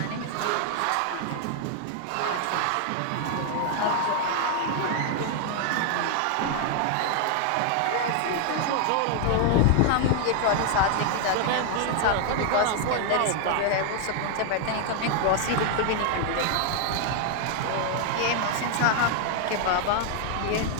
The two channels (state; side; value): different; both; correlation 0.00